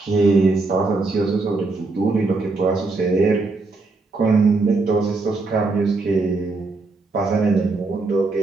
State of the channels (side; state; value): left; quieter; 3.7 dB